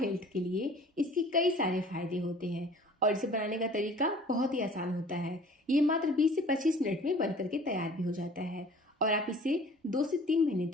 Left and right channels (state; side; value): normal; both; correlation 0.49